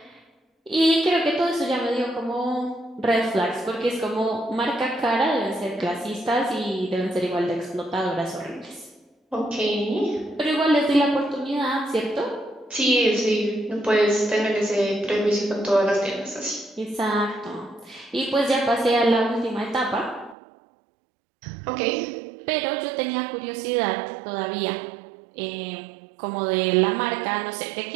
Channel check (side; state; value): left; drops out; at 20.4 s